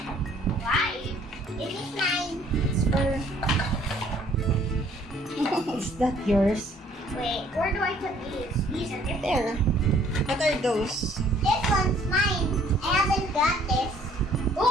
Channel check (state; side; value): normal; both; correlation 0.60